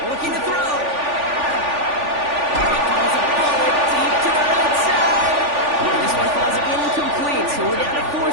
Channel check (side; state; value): left; late; 3.4 ms